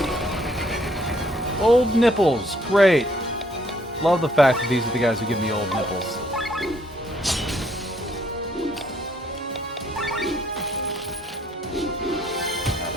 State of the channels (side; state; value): both; normal; correlation 0.67